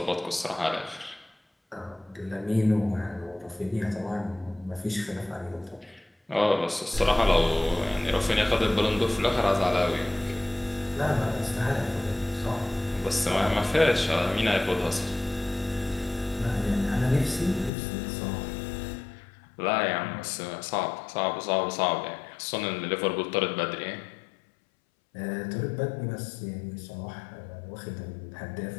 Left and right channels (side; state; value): right; drops out; at 17.7 s